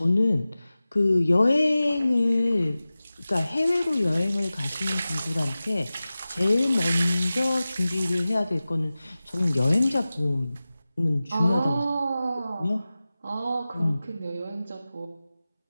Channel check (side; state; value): both; inverted; correlation -0.97